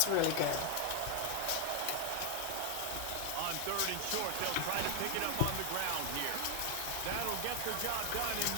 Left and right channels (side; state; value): both; different; correlation 0.00